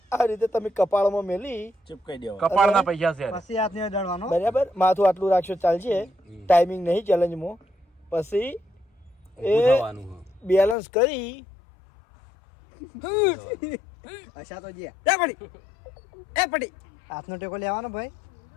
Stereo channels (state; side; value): drops out; right; at 10.8 s